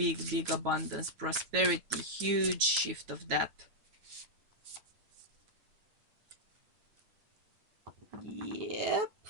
abundance, prosperity, huge shift of that. Yep.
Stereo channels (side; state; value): left; late; 9.3 ms